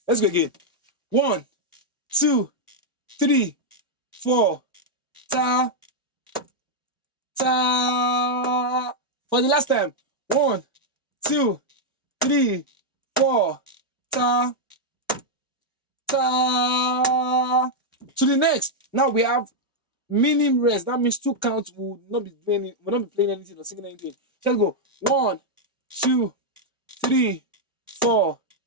Let's go again. 1, 2, 3, 4. Ta, ta. For the last time. 1, 2, 3, 4. Ta, ta. To the next. Now we have meaning rest. That means 2 counts will not be playing anything or singing anything. Let's go. 1, 2, 3, 4.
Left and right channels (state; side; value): normal; both; correlation -0.03